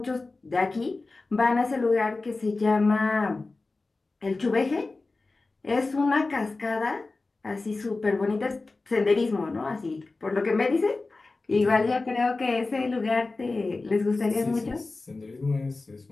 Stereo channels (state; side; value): quieter; right; 3.5 dB